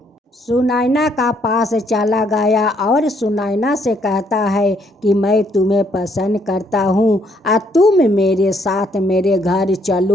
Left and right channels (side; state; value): both; normal; correlation 0.69